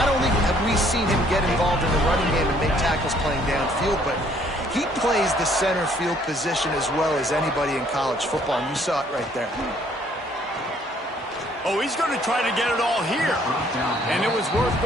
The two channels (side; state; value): both; normal; correlation 0.63